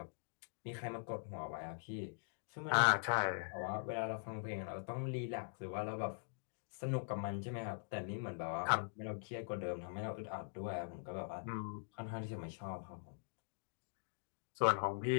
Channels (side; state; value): right; silent; digital silence